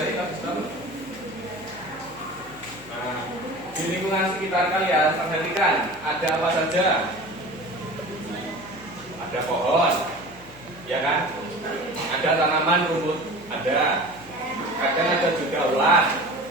tentang sistem. Nah, di lingkungan sekitar kalian, perhatikan ada apa saja. Ada pohon, ya kan? Ada tanaman rumput, ada. Kadang ada juga ulat,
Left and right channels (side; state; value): left; noise; hum, 23 dB below the sound